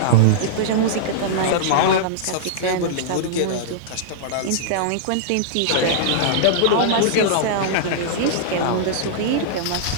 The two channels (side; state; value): both; different; correlation -0.02